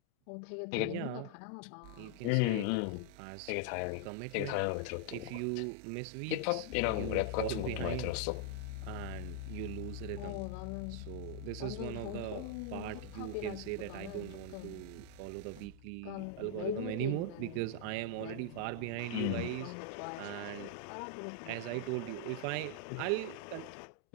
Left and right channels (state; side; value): different; both; correlation 0.00